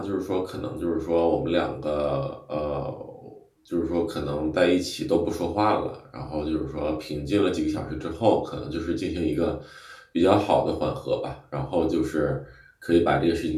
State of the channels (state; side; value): identical; both; correlation 1.00